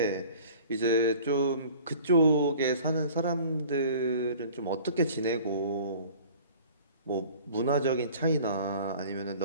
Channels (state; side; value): inverted; both; correlation -0.46